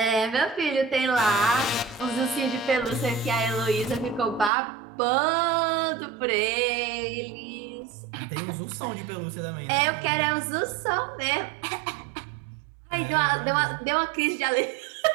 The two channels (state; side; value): drops out; left; at 4.5 s